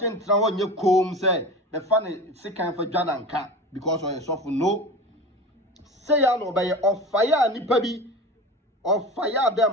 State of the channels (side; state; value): both; normal; correlation 0.31